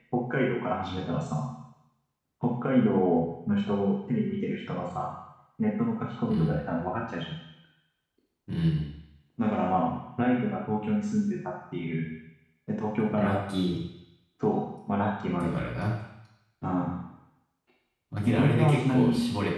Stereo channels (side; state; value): both; identical; correlation 1.00